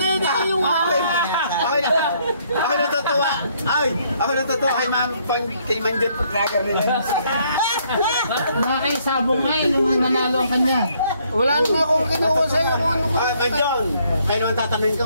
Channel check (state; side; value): inverted; both; correlation -0.68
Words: yun. Dahil yung akin. Ako natutuwa. Ay, ako natutuwa kay Manjot Paglagar nila. Nakakisabong nga eh, nung nanalo ang kanya. Wala naman akong kinuha sa'yo kung ano ka. Manjon, kayo naman tatanungin